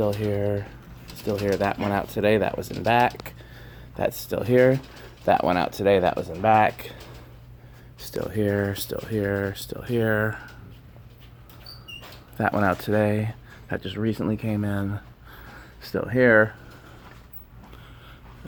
here, still here. That went out today, that was in back. That's still here. That went out today, that was in back. Still here, still here, still here. That went out today. That just recently came in. Still here.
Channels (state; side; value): identical; both; correlation 1.00